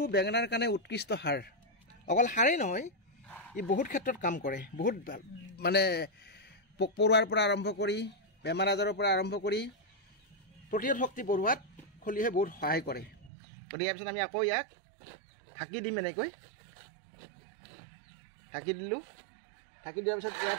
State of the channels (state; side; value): drops out; left; at 13.3 s